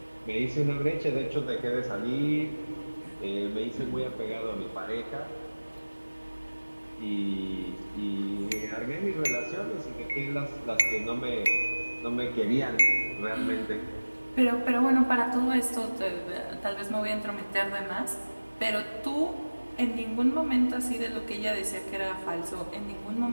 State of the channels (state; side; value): inverted; both; correlation -1.00